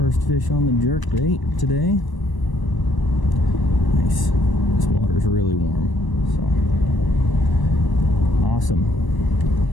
fish on the jerk bait today. Nice. This water's really warm. So awesome.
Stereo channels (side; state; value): right; late; 1.0 ms